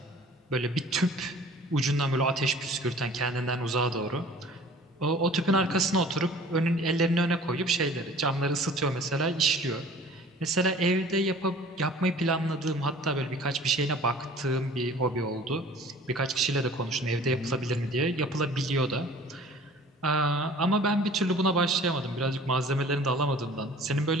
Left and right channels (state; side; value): normal; both; correlation 0.48